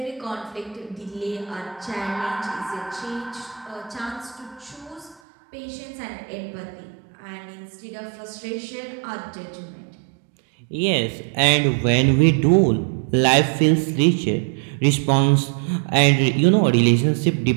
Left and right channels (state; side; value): drops out; left; at 5.2 s